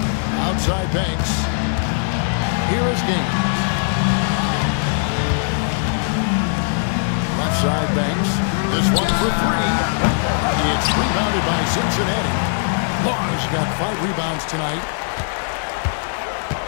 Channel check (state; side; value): silent; right; digital silence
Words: Outside Banks. Here is Gaines. Left side Banks. This one for 3. It's rebounded by Cincinnati. Barnes got 5 rebounds tonight.